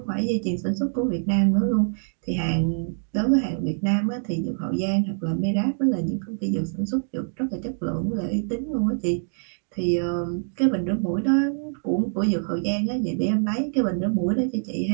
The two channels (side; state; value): left; silent; digital silence